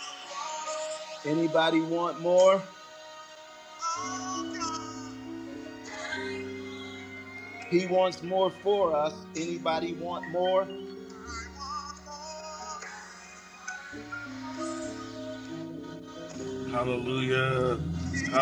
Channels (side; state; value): both; identical; correlation 1.00